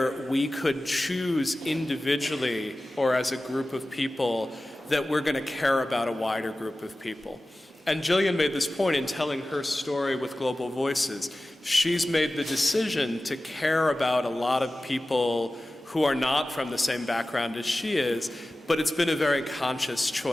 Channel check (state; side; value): normal; both; correlation 0.96